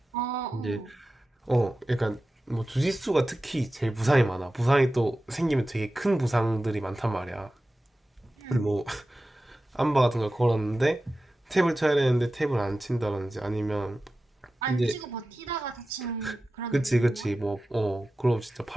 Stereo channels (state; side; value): normal; both; correlation 0.94